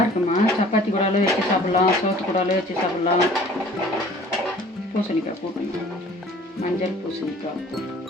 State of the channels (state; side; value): normal; both; correlation 0.50